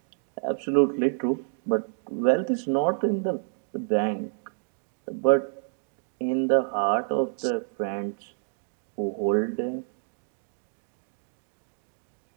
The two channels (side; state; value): left; silent; digital silence